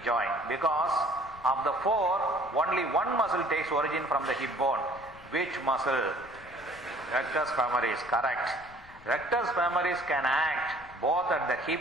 joint, because of the four, only one muscle takes origin from the hip bone. Which muscle? Rectus femoris, correct. Rectus femoris can act both at the hip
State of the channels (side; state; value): left; noise; rumble, 22 dB below the sound